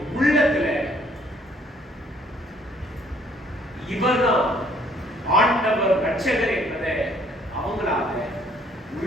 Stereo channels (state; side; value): normal; both; correlation 0.63